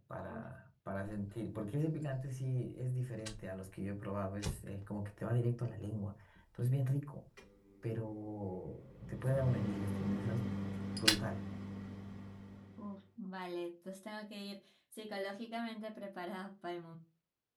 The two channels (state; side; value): identical; both; correlation 1.00